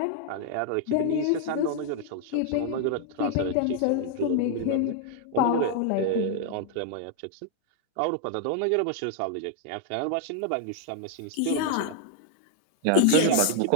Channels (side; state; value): both; different; correlation 0.00